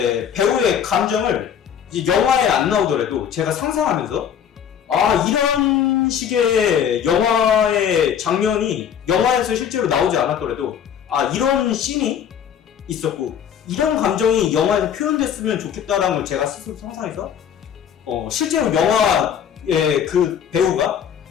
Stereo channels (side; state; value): right; quieter; 8.5 dB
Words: 배우의 감정을 이제 영화에 안 나오더라도 제가 상상하면서, 이런 식의 영화의 장면이 영화에서 실제로 나오지 않았더라도 이런 씬이 있었고 이런 감정이 영화에서 표현됐으면 좋겠다라는 걸 제가 스스로 상상해서 실제로 영화의 그 배우가